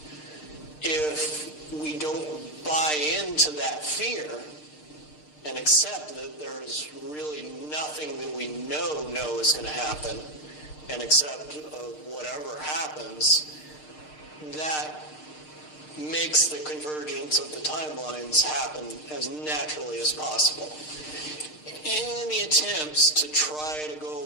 If we don't buy into that fear and accept that there's really nothing that we know is going to happen, and accept whatever happens, that makes the convergence of the timelines happen as naturally as possible. Any attempts to try to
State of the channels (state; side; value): late; right; 6.6 ms